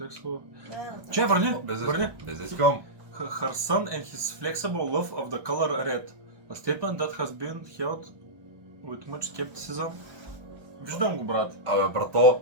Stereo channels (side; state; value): left; late; 1.2 ms